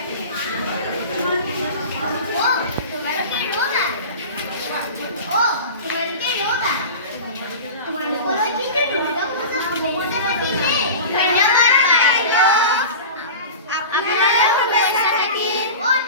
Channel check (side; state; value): both; inverted; correlation -0.33